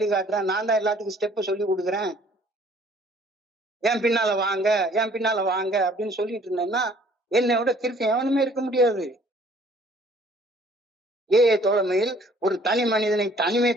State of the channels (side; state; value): both; normal; correlation 0.57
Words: நான் தான் எல்லாத்துக்கும் ஸ்டெப் சொல்லி கொடுக்குறேன், என் பின்னால வாங்க என் பின்னால வாங்க அப்படின்னு சொல்லிட்டு இருந்தேன்னா என்னோட கிறுக்கு எவனுமே இருக்க முடியாது. ஏஐ தோழமையில் ஒரு தனி மனிதனை